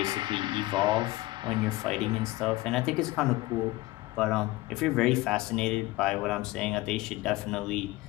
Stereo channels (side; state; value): right; quieter; 19.4 dB